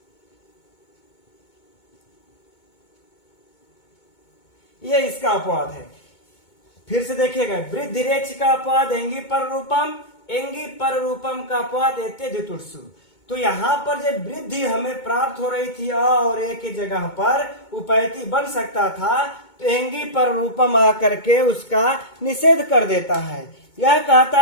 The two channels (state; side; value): late; right; 2.2 ms